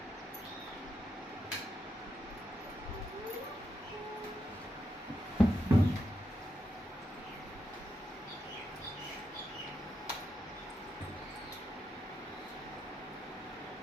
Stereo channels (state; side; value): normal; both; correlation 0.84